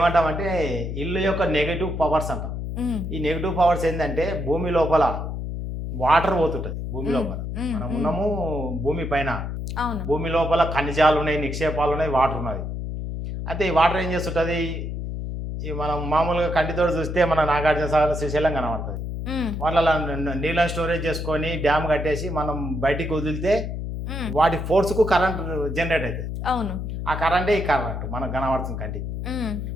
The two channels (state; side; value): noise; left; hum, 5 dB below the sound